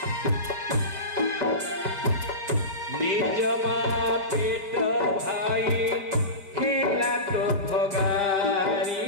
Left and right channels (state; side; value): late; left; 5.2 ms